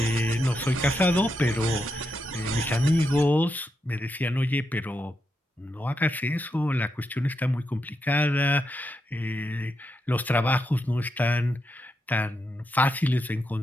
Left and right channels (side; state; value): both; normal; correlation 0.84